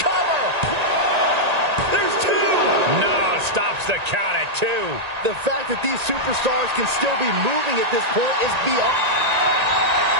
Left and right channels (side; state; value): left; late; 1.8 ms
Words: Cover! There's 2! No, stops the count at 2. The fact that these superstars can still be moving at this point is beyond.